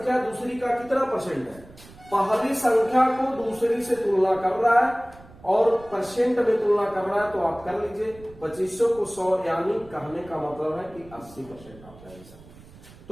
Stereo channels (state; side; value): noise; right; rumble, 21 dB below the sound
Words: दूसरी का कितना परसेंट है, पहली संख्या को दूसरी से तुलना कर रहा है और परसेंट में तुलना कर रहा है, तो आप कर लीजिए 2500 को 100, यानी कहने का मतलब है कि 80% आप ले सकते।